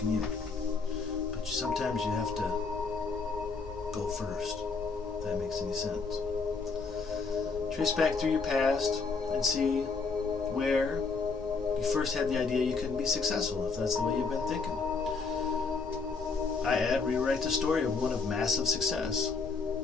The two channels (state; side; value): quieter; right; 4.5 dB